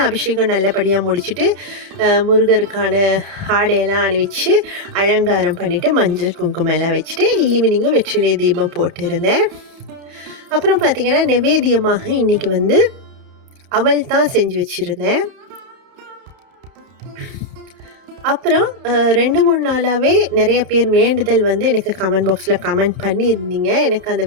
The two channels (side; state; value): left; late; 31 ms